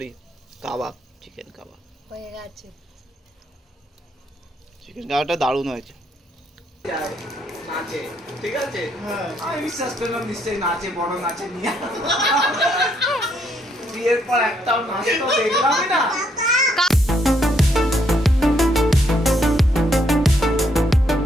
কাবাব, চিকেন কাবাব হয়ে গেছে। চিকেন কাবাবটা দারুণ হয়েছে। নাচে, ঠিক আছে? আমি বিশ্বাস করলাম নিশ্চয়ই নাচে, বড় নাচে নিয়ে। বিয়ের পর একটাও নাচ তো দেখলাম না।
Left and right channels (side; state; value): both; normal; correlation 0.73